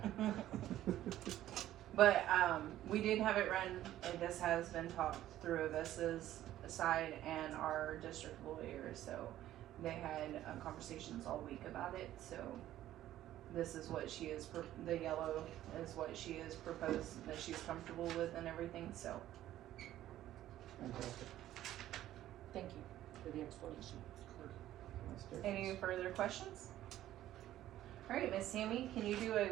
But we did have it run, and this has been talked through Avista's side and our district lawyer, so they had conversations all week about it, so this is what she is, the yellow is what she is proposed, that she's comfortable with and everything, so. Fantastic. Thank you for the explanation. That's different. Any further questions? Alright, Miss Sammy, can you do a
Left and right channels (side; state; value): left; quieter; 13.3 dB